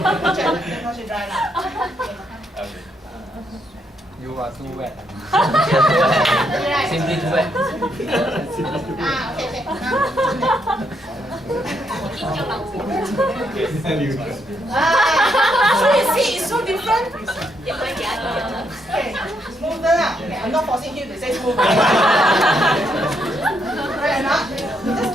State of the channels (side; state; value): both; normal; correlation 0.76